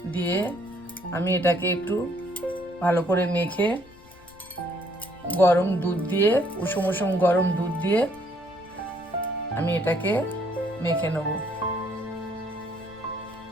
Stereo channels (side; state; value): left; noise; rumble, 25 dB below the sound